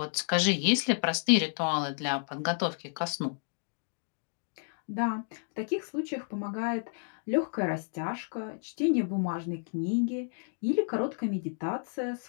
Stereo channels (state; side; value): silent; right; 57 dB below the other